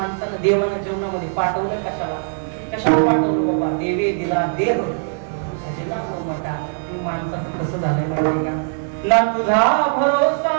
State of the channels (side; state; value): left; silent; 65 dB below the other